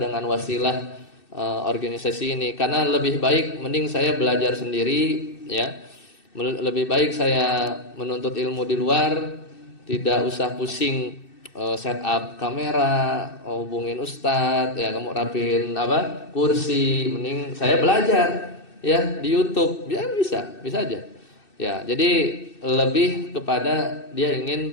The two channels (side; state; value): right; late; 2.6 ms